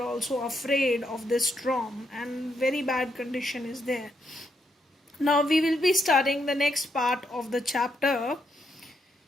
afraid of this storm, and very bad condition is there. Now we will be starting the next part of the chapter.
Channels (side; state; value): both; normal; correlation 0.79